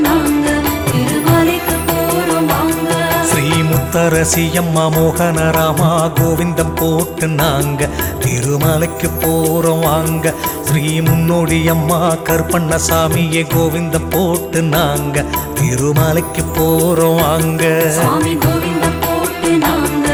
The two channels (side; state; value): both; identical; correlation 1.00